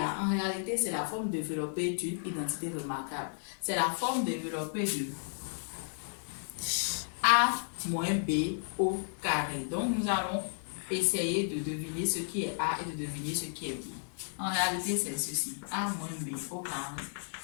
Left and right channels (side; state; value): right; silent; digital silence